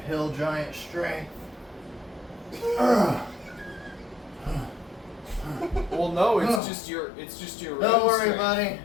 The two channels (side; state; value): right; drops out; at 6.6 s